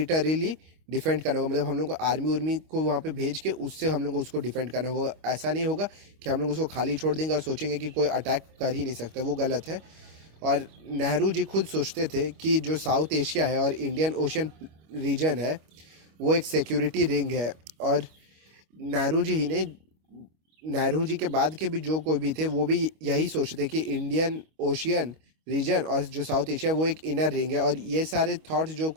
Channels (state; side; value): late; left; 25 ms